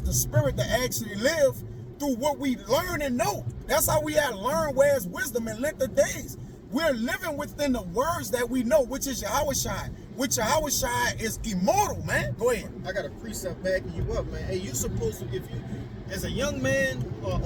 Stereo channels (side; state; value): both; identical; correlation 1.00